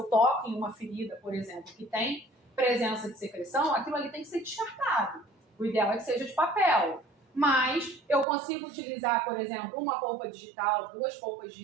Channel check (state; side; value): drops out; left; at 8.2 s